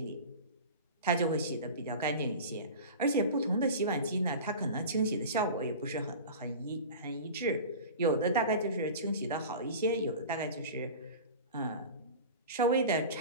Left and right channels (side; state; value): both; inverted; correlation -0.34